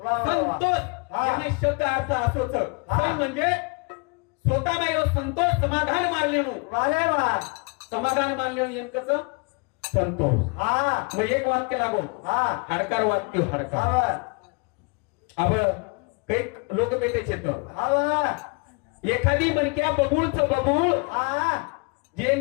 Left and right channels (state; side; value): quieter; right; 31.7 dB